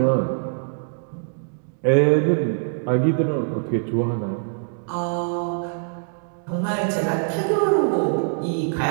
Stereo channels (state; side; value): silent; left; digital silence